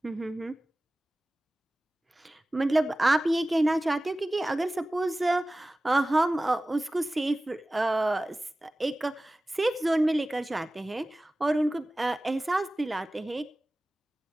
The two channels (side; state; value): both; normal; correlation 0.97